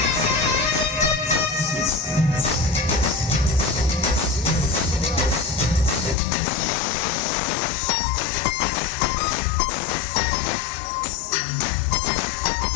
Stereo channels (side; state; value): right; drops out; at 6.2 s